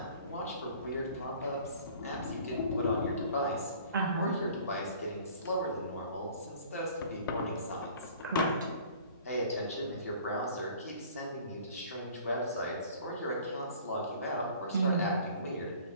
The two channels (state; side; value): inverted; both; correlation -0.49